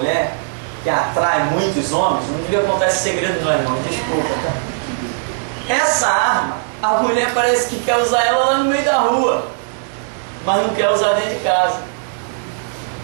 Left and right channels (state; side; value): silent; left; digital silence